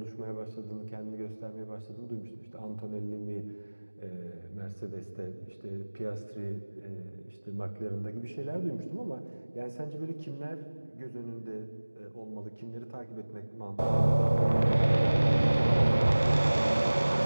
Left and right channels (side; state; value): both; inverted; correlation -1.00